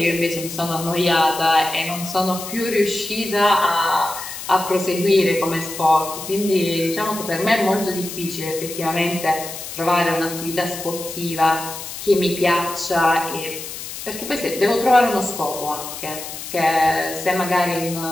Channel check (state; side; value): noise; left; hiss, 9 dB below the sound